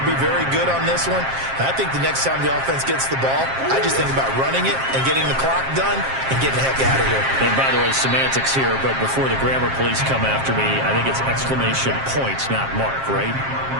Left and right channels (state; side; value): late; left; 7.5 ms